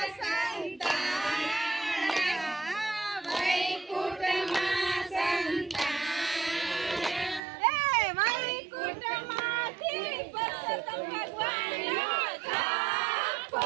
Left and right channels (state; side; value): drops out; left; at 7.4 s